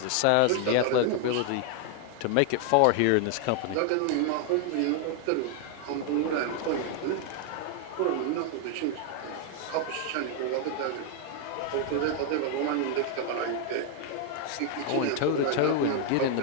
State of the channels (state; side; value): different; both; correlation 0.00